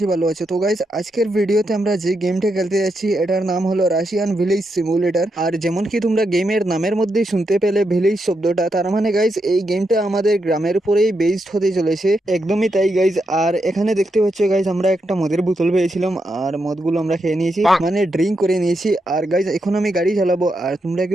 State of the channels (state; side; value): normal; both; correlation 0.83